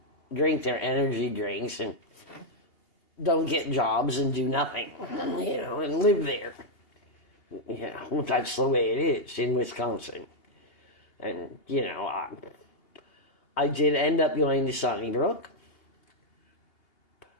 drink their energy drinks and don't get jobs and do nothing, and live there. That's the way it is in Wisconsin. And, I did end up going to Sunnybrook,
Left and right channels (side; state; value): right; late; 2.8 ms